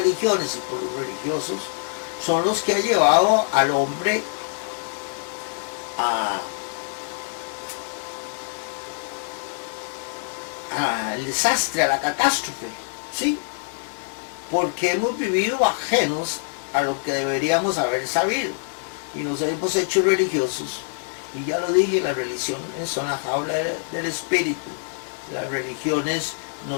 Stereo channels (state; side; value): silent; right; digital silence